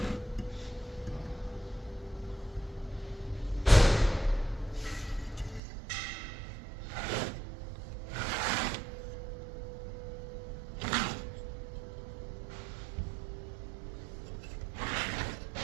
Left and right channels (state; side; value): drops out; left; at 5.6 s